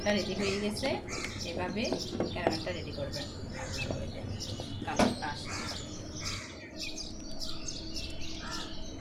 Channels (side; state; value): both; identical; correlation 1.00